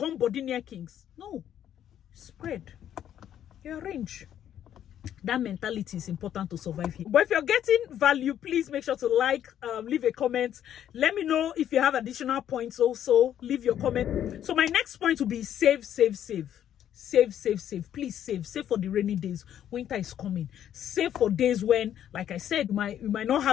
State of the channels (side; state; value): right; quieter; 10.4 dB